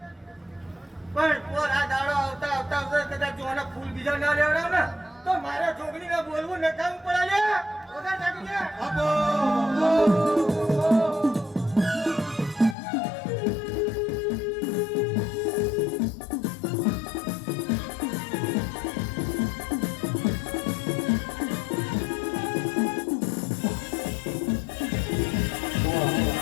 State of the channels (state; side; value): drops out; right; at 12.8 s